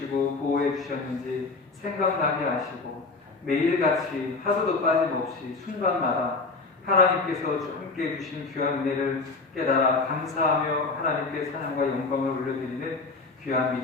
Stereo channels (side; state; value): right; quieter; 3.9 dB